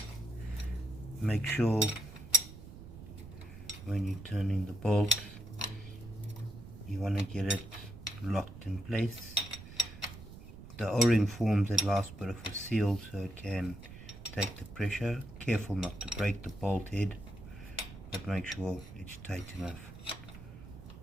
make sure when you're turning the bolt, you want to get it locked in place. The O-ring forms a last bit of a seal so it can take the pressure. Careful not to break the bolt head, but make sure it's tight enough.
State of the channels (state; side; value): noise; right; rumble, 15 dB below the sound